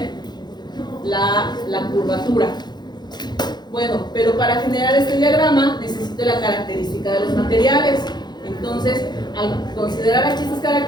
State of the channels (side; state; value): right; late; 0.21 ms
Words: la curvatura. Bueno, pero para generar este diagrama necesito la característica de los materiales. Entonces, al considerar aquí estas